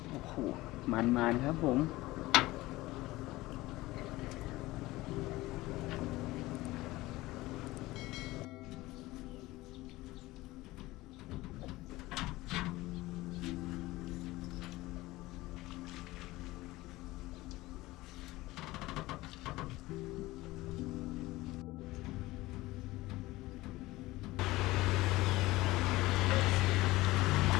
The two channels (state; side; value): quieter; right; 19.0 dB